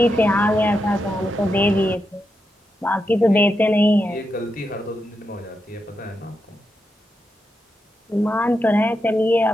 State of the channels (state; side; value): normal; both; correlation 0.85